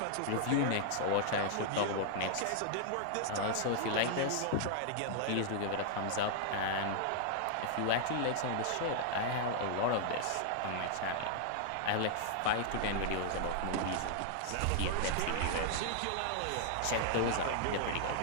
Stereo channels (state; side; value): different; both; correlation -0.01